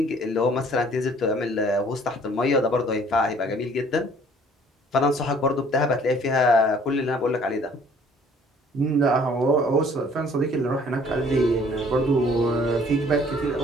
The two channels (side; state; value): both; normal; correlation 0.56